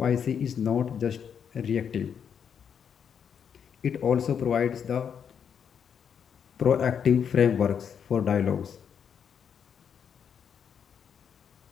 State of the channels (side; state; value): right; quieter; 7.6 dB